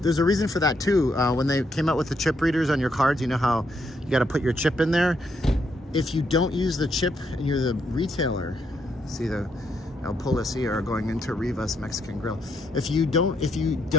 There's a reason for that too. When they came out with the chip readers on your cards, you know how you got to put your chip in there. If you don't use the chip and you're the retailer, see the El Policía are going into Rivas Mexican Grill. If you're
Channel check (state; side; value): normal; both; correlation 0.76